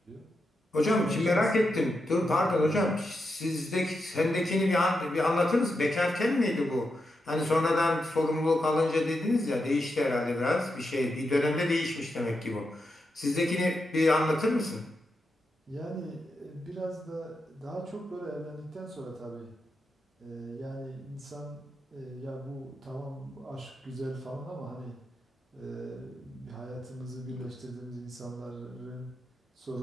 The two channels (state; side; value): normal; both; correlation 0.86